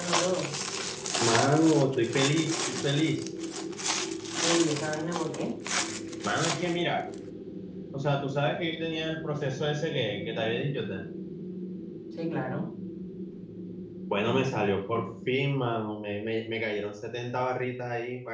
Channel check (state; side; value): identical; both; correlation 1.00